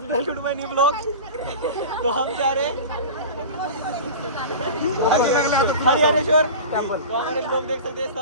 welcome to my new blog. तो हम जा रहे हैं हरिहरेश्वर टेम्पल. तो हमारे लोग देख सकते हैं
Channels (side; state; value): both; inverted; correlation -0.33